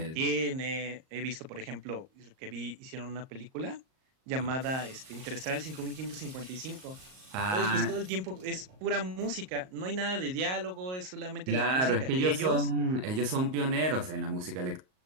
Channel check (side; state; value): left; late; 38 ms